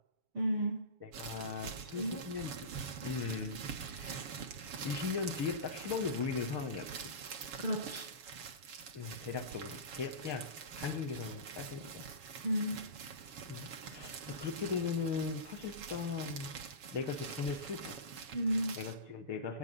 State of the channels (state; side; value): late; left; 7.1 ms